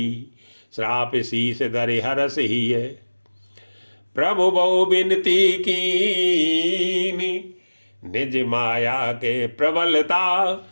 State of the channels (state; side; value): inverted; both; correlation -1.00